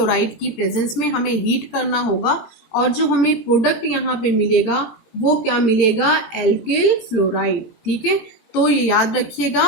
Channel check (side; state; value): right; late; 18 ms